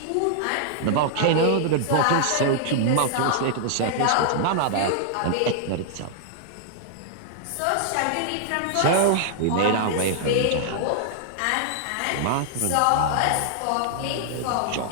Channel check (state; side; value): different; both; correlation -0.01